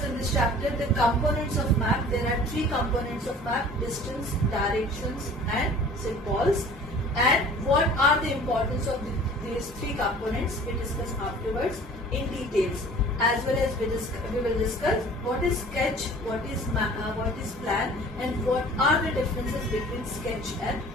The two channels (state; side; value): normal; both; correlation 0.46